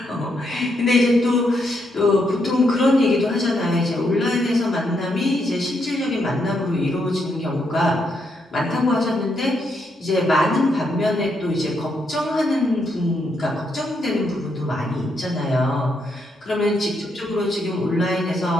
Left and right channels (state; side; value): normal; both; correlation 0.78